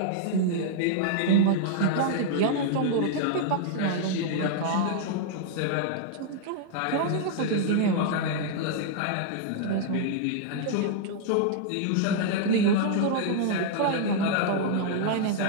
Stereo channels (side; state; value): both; different; correlation -0.01